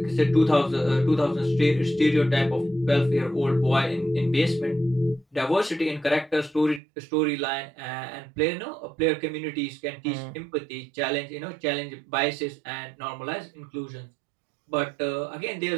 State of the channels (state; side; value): drops out; left; at 6.8 s